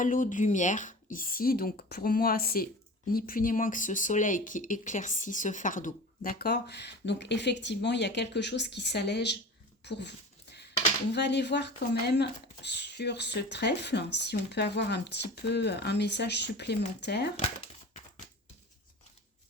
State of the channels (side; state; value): both; normal; correlation 0.36